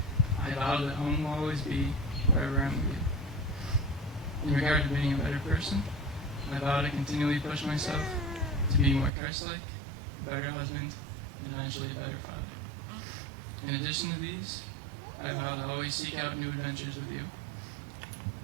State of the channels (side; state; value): left; drops out; at 9.1 s